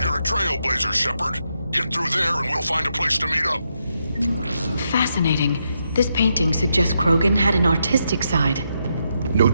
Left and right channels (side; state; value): both; inverted; correlation -0.81